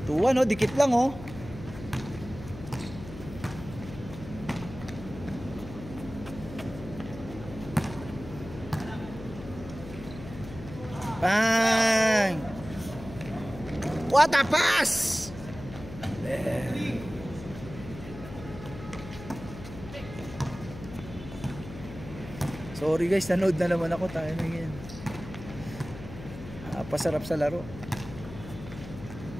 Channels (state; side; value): noise; left; hum, 12 dB below the sound